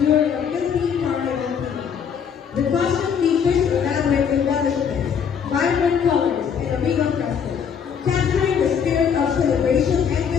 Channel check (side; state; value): right; quieter; 7.3 dB